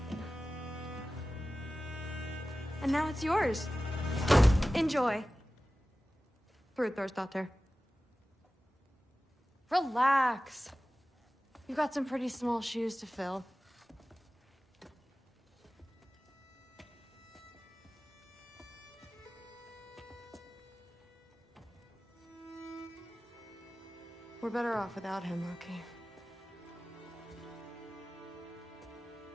And now it's yours. Enjoy. Daughter. Relax. You've got some pretty small shoes to fill. We're better off without him, Loki.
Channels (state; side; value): normal; both; correlation 0.96